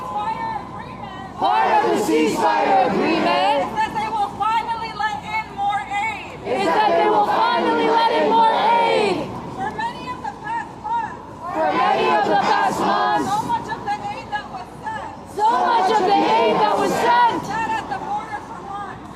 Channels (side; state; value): both; identical; correlation 1.00